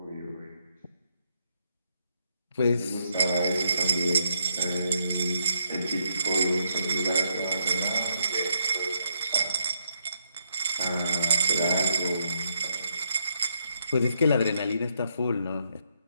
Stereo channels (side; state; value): both; inverted; correlation -0.76